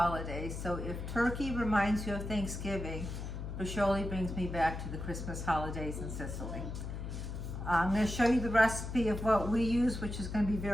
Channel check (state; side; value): noise; left; hum, 6 dB below the sound